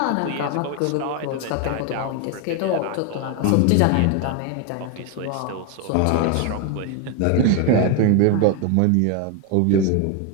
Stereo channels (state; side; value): different; both; correlation 0.01